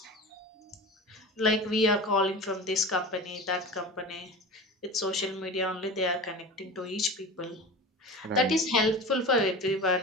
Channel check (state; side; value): normal; both; correlation 0.32